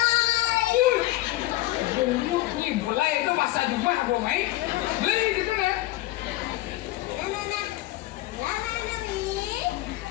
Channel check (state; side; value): quieter; right; 17.5 dB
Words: Mulai itu masa juga gua main beli gitu kan.